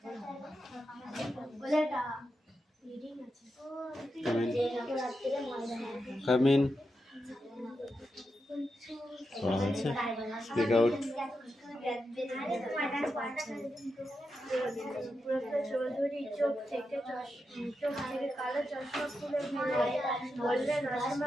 ওটা রিডিং আছে যেরকম রাত্রে ময়দানে Come in. পড়া হয়েছে? Speak out. চৌধুরী চোখ থেকে কালো চশমা খুলে বললেন,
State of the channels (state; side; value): normal; both; correlation 0.87